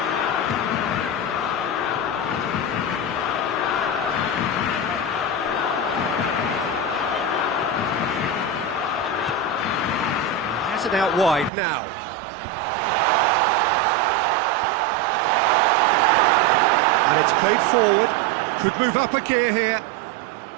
Has it out wide now. And it's played forward. Could move up a gear here.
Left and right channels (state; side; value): drops out; left; at 11.5 s